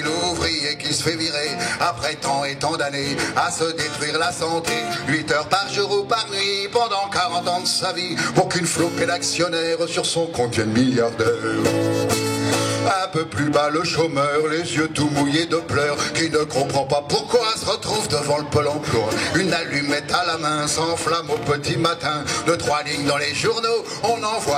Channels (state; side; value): identical; both; correlation 1.00